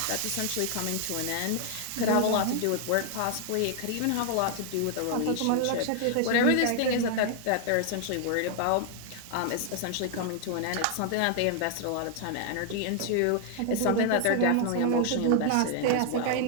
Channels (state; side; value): different; both; correlation 0.00